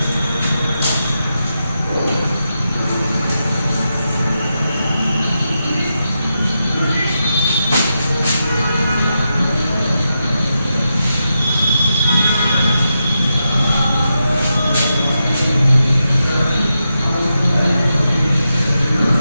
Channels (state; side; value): inverted; both; correlation -0.87